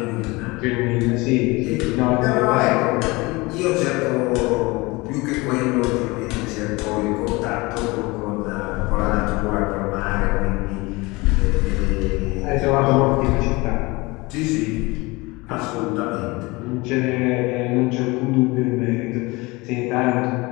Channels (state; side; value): quieter; right; 23.6 dB